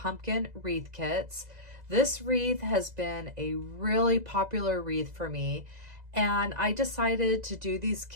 wreath kits. This wreath has been a really popular wreath for me, and I decided to do these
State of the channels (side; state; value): left; late; 2.0 ms